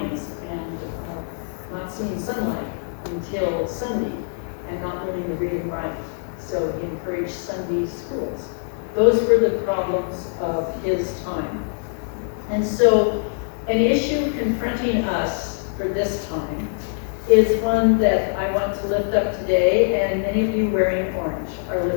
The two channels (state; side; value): silent; right; 63 dB below the other